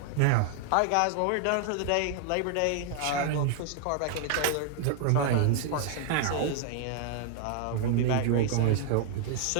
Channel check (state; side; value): different; both; correlation 0.00